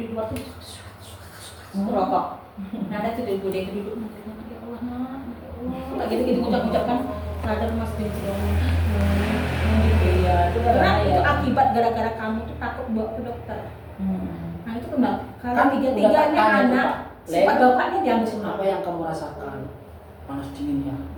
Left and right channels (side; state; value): both; identical; correlation 1.00